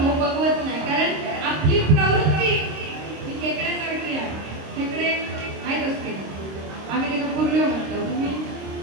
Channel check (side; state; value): left; late; 26 ms